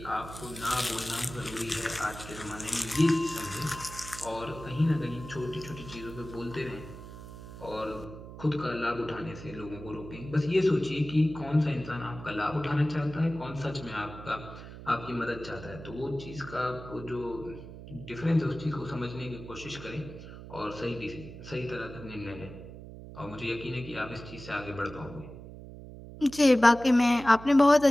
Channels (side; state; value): right; noise; hum, 14 dB below the sound